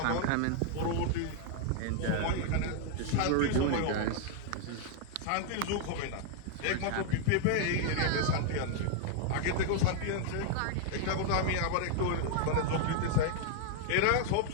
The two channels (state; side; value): different; both; correlation 0.00